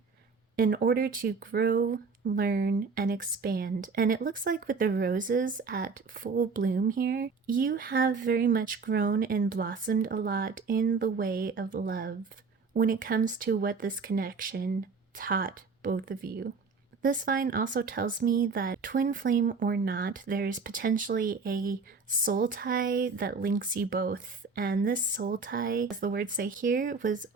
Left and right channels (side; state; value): left; quieter; 4.7 dB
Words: in order to grow, learn, and expand. And it looks like with the roses at full bloom here, you have very much grown and blossomed a lot in the way of love when it comes to what this connection taught both of you. This vine also tells me that twin flame or not, there is potentially a soul tie that links you both. And this soul tie, as the words say here, was